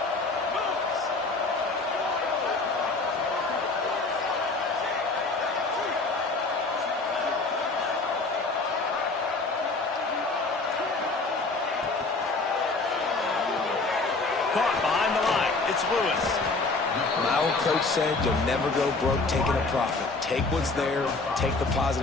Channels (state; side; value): quieter; right; 3.6 dB